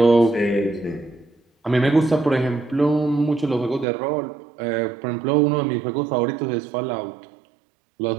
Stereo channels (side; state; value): left; drops out; at 3.9 s